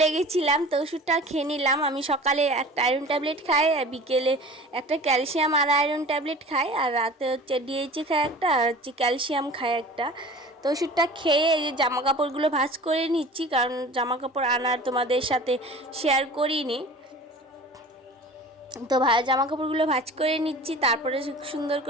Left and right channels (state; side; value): normal; both; correlation 0.41